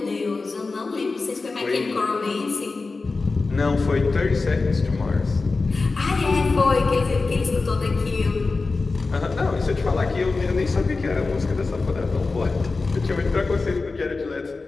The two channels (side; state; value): right; quieter; 3.9 dB